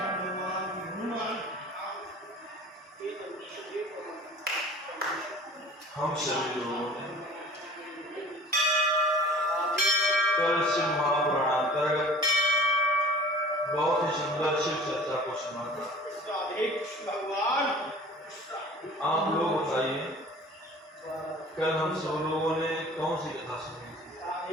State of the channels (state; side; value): normal; both; correlation 0.44